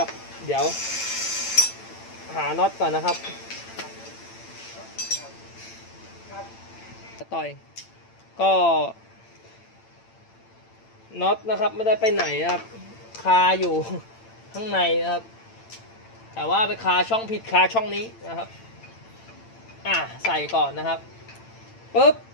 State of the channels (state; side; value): late; right; 8.9 ms